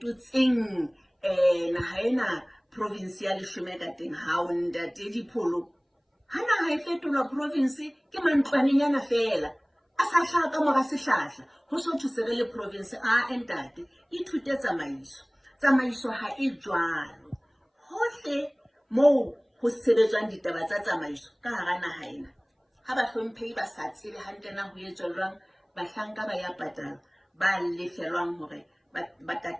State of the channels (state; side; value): identical; both; correlation 1.00